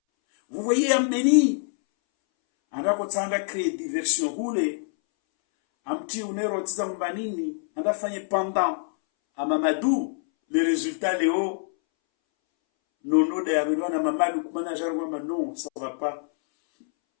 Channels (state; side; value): silent; right; 61 dB below the other